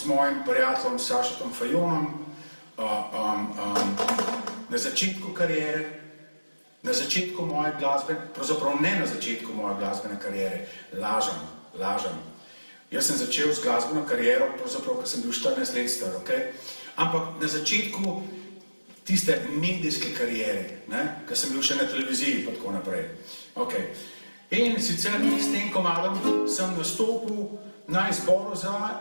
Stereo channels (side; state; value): both; inverted; correlation -1.00